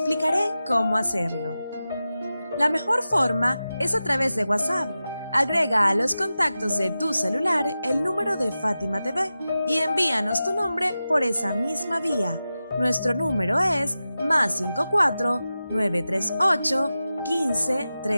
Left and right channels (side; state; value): both; inverted; correlation -0.93